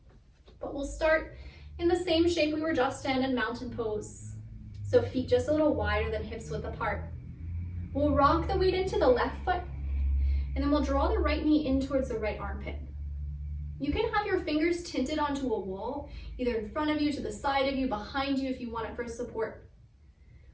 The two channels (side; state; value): both; identical; correlation 1.00